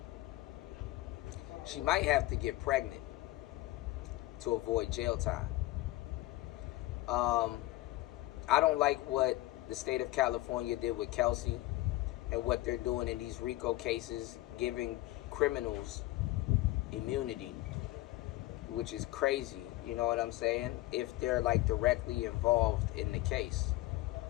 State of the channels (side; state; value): right; quieter; 17.9 dB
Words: She might have to get pregnant to avoid jail time. I don't like what the state of California did with Kelsey and what they're doing in these RICO cases, giving criminals immunity, which is crazy, you know what I'm saying? If they're like directly involved in the case,